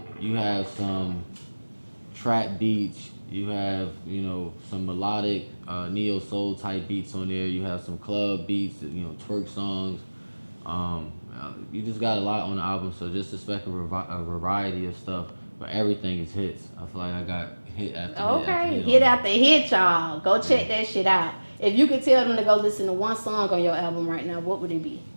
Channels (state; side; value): inverted; both; correlation -1.00